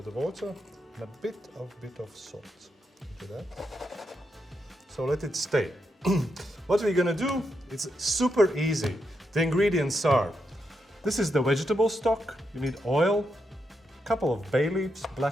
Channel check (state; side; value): normal; both; correlation 0.83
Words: water and a bit of salt into that. So let it stay. What we're gonna do, it's super easy. The ingredients are, this is the vegetable stock. You need oil, a couple of bay leaves,